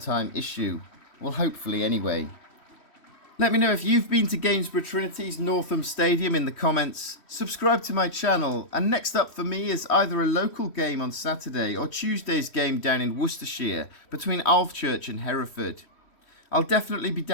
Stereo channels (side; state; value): right; late; 3.1 ms